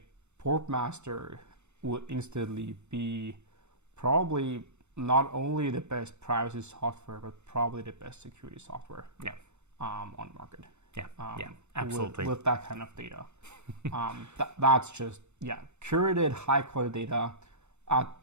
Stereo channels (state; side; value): late; left; 0.82 ms